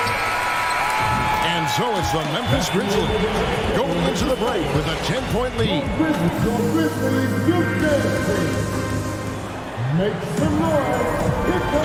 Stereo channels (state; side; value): identical; both; correlation 1.00